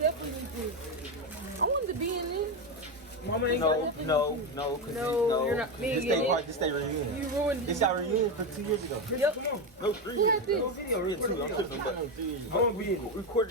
need this. I wanted to be in this. Mama ain't no, you're not. This stay reunion. You ruined it. This got reunion for 2 years ago. Yep. No, 3 Who years had ago. this? No video real too. I'm tripping, but 3 years ago. I want to be in it.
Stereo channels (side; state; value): both; normal; correlation 0.12